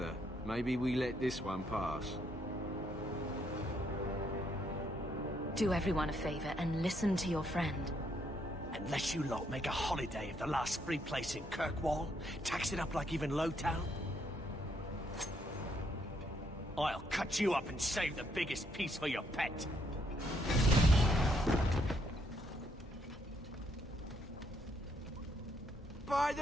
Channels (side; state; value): both; normal; correlation 0.73